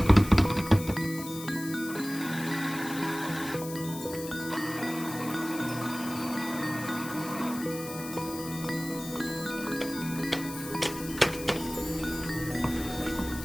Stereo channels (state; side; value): noise; left; hiss, 12 dB below the sound